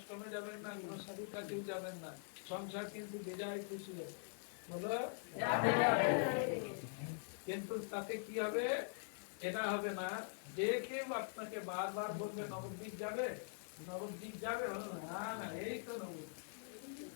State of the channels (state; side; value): silent; right; digital silence